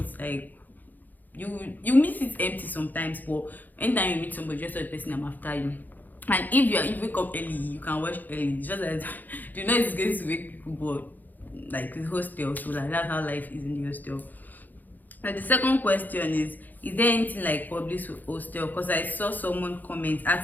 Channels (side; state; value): right; late; 0.085 ms